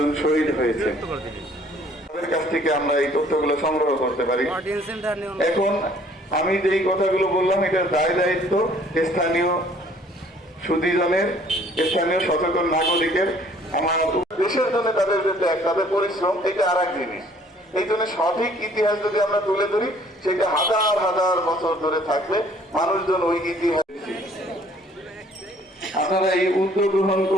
শহীদ হয়েছে। তাদের কাছ থেকে আমরা এই তথ্যগুলো সংগ্রহ করতে পারি। এখন আমি যেই কথাগুলো বললাম এটার দায়িত্ব স্থানীয় সুধীজনের, স্থানীয় সচেতন নাগরিকের। আমার দেশের জন্য তাদের যে ত্যাগ, তাদের পরিশ্রম, এটা আর এক জিনিস। এই জন্য সঠিক ইতিহাস যদি আমরা তুলে ধরি, সেটা হাজার হাজার বছর ধরে থাকবে। মানুষজন ওই ইতিহাস, আপনারা এই উদ্যোগ গ্রহণ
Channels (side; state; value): both; normal; correlation 0.58